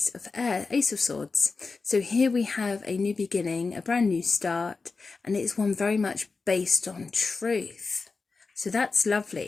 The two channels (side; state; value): right; quieter; 4.3 dB